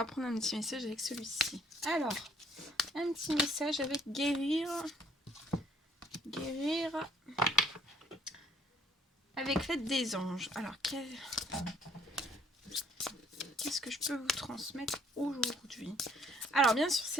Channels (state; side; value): normal; both; correlation 0.62